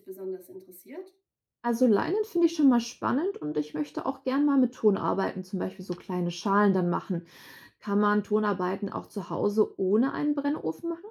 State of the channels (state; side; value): identical; both; correlation 1.00